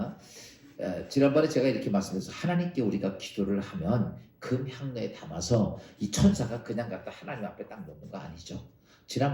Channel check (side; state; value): both; identical; correlation 1.00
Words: 지난번에 제가 이렇게 말씀드려서 하나님께 우리가 기도를 하면 금 향내에 담아서 이 천사가 그냥 갖다 하나님 앞에 딱 놓는 거 아니죠.